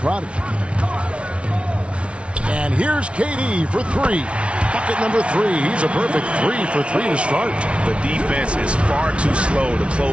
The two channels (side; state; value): left; late; 0.060 ms